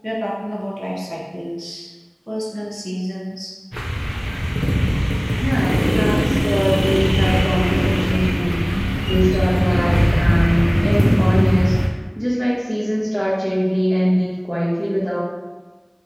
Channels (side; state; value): both; identical; correlation 1.00